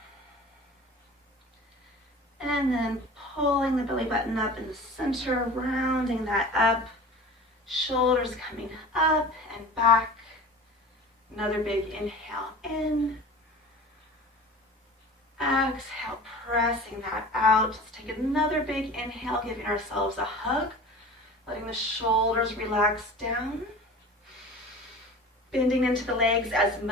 And then pulling the belly button up in the center, rounding that up. Shoulders coming up and back. Another big inhale in. Exhale, pressing that out. Let's take another big inhale, giving ourselves a hug. Letting the shoulders relax down. Bending into the legs as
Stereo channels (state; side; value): normal; both; correlation 0.38